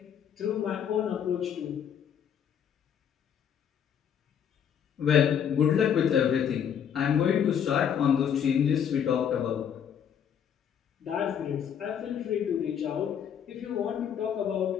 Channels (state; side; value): quieter; right; 8.4 dB